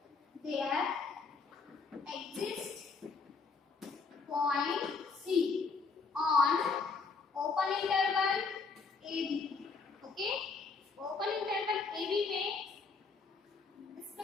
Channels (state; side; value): quieter; right; 4.5 dB